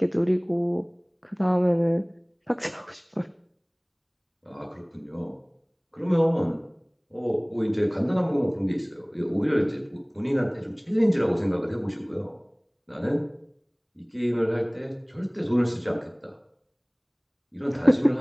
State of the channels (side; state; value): both; identical; correlation 1.00